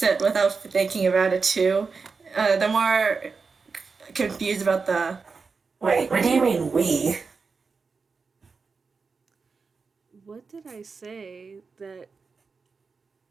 it without thinking about it too. The more confused about the. Wait, what do you mean we? What did I say that?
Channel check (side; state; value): left; quieter; 4.8 dB